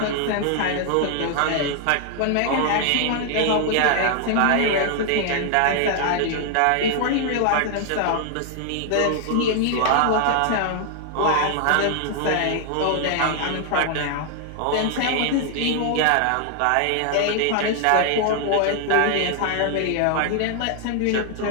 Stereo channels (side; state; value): both; different; correlation 0.00